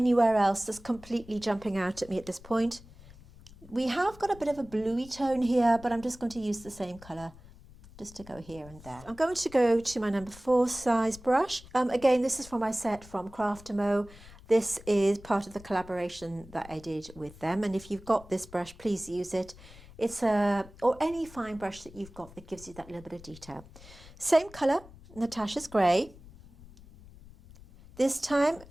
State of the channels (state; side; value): noise; left; rumble, 20 dB below the sound